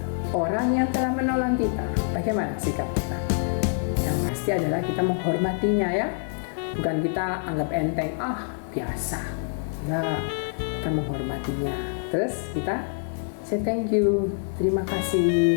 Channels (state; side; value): silent; right; 61 dB below the other